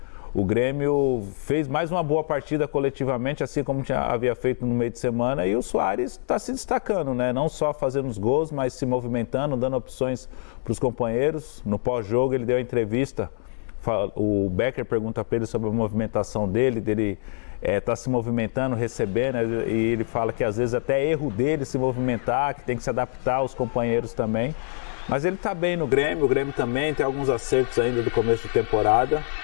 O Grêmio fez mais uma boa partida coletivamente, assim como havia feito no meio de semana, e o Soares está se destacando, né? Não só fazendo os gols, mas se movimentando, dando opções para os companheiros. No pós-jogo ele deu a entrevista, o Becker pergunta para ele sobre a movimentação dele tá se movimentando, recebendo, e ele fala que às vezes até é erro dele se movimentar, que tem que se adaptar aos companheiros também. Mas ele está bem no Grêmio, o Grêmio também tem alguns acertos ainda do começo de temporada,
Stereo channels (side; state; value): right; silent; 62 dB below the other